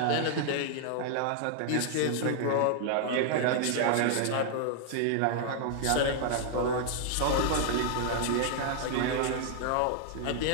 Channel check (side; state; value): both; different; correlation -0.01